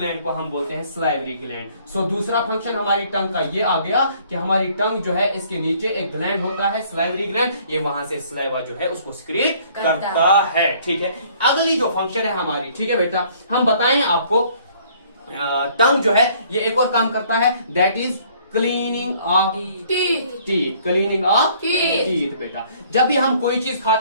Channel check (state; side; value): inverted; both; correlation -0.59